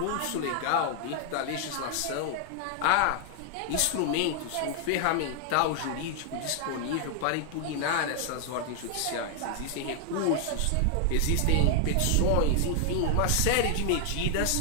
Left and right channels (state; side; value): different; both; correlation 0.00